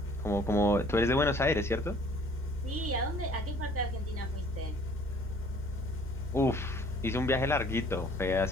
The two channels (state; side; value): normal; both; correlation 0.55